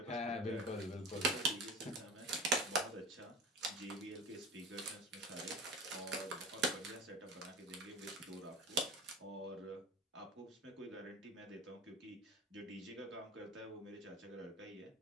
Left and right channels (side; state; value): both; normal; correlation 0.32